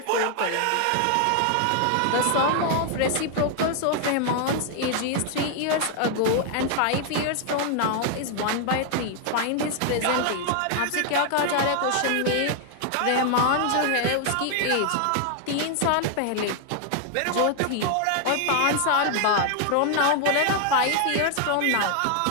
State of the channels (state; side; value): different; both; correlation 0.00